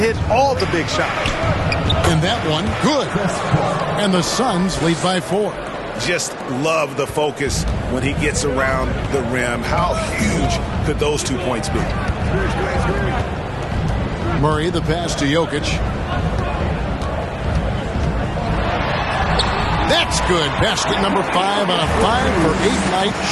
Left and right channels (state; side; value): identical; both; correlation 1.00